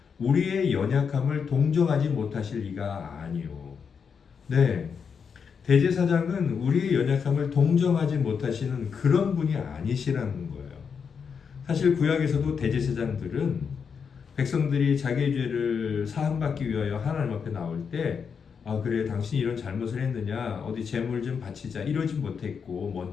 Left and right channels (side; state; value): right; quieter; 6.4 dB